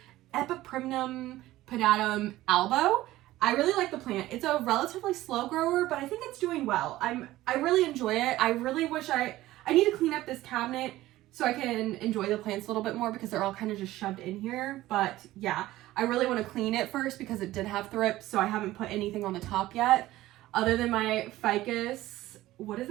Epiprimnum Pedatum albo. I really like the plant. It's a relatively slow grower, but I think it's doing well. I really enjoy it. I really wish I need to clean up this cabinet so I can enjoy the plants a little bit more because they're all kind of just shoved in here. But yeah, I really want to clean it first because it did have thrips, so I haven't put anything on the top yet other than my ficus. What is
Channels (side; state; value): left; quieter; 16.2 dB